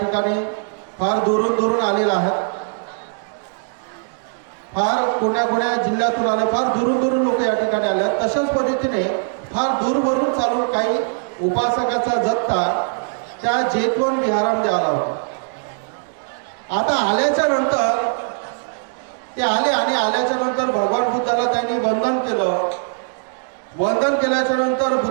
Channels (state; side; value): silent; left; digital silence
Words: फार दुरून आलेला आहेत। फार कोण्या जिल्ह्यातून आले, फार दुरून लोक या ठिकाणी आले। तशाच पद्धतीने फार दूरवरून चालून काही उपासकाचा जत्था त्या जैतवन विहारामध्ये आला होता। आता आल्याच्या नंतर ते आले आणि आल्याच्या नंतर भगवान बुद्धाला त्यांनी वंदन केलं। वंदन केल्याच्या नंतर